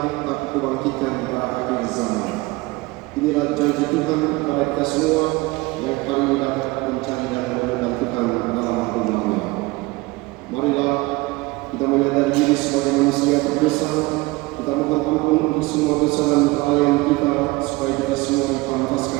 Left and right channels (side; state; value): left; quieter; 22.2 dB